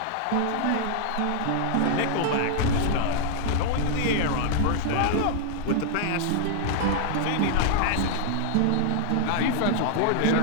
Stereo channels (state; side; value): different; both; correlation -0.01